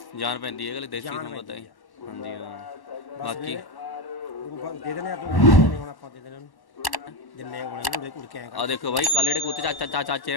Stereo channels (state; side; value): late; right; 1.1 ms